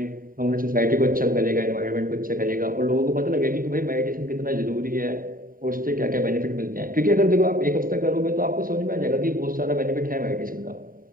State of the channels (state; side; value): late; left; 0.41 ms